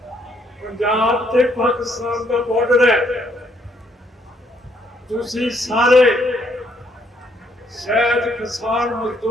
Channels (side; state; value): both; normal; correlation 0.70